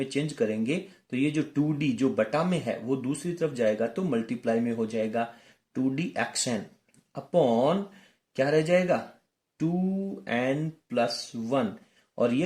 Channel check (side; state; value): both; identical; correlation 1.00